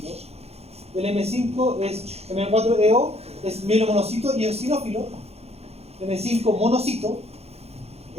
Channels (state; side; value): late; left; 0.30 ms